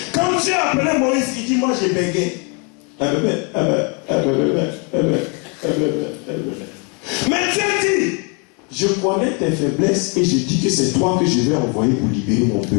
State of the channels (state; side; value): quieter; right; 34.3 dB